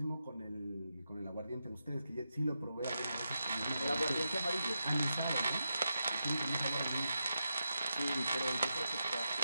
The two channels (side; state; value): both; inverted; correlation -0.87